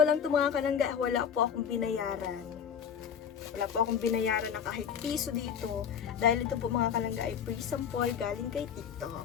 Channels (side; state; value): right; quieter; 7.7 dB